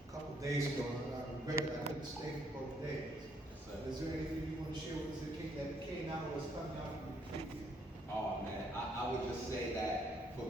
couple of days ago, and I regret that I couldn't stay for both days. Is there anything you want to share with us that came out of what's coming out from the retreat? Oh man, I would just say that for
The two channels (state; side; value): normal; both; correlation 0.69